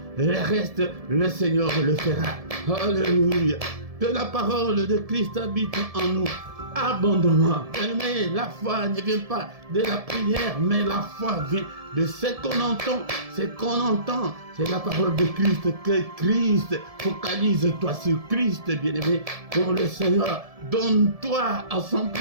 le reste, le Seigneur le fera. Alléluia. Que la parole de Christ habite en nous abondamment. Mais la foi ne vient pas de la prière, mais la foi vient de ce qu'on entend. Ce qu'on entend, c'est la parole de Christ. Que Christ, focalise-toi sur Christ, bien-aimé. Pour le Seigneur, donne-toi à 100%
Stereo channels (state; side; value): late; left; 1.7 ms